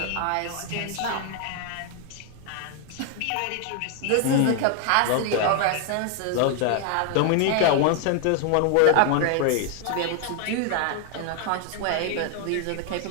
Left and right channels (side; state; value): both; different; correlation 0.00